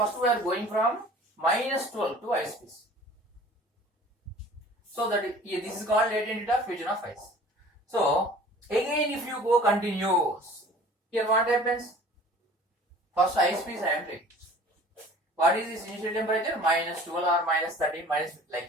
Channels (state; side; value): normal; both; correlation 0.47